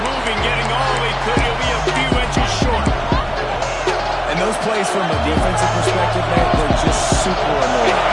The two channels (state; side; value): identical; both; correlation 1.00